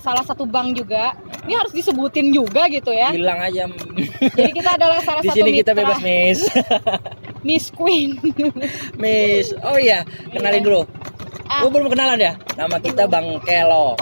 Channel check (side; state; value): both; inverted; correlation -1.00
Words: salah satu bank juga. Ini harus disebutin juga gitu ya. bilang aja. Jadi kita adalah salah Di satu sini kita mitra bebas, Miss. Miss Queen. Miss. Oh iya, kenalin dulu. Belum kenalan ya? Nama kita Bang Kelo.